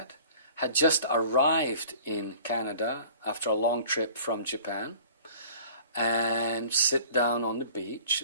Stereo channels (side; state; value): both; inverted; correlation -0.46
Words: had just arrived in Canada after a long trip from Japan, and sit down on the beach.